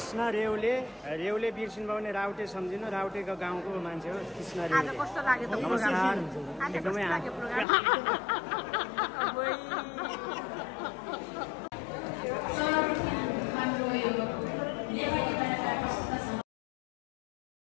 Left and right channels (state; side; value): drops out; right; at 7.7 s